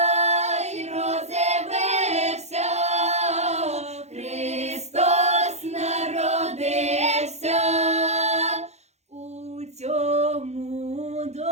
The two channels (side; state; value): left; late; 0.32 ms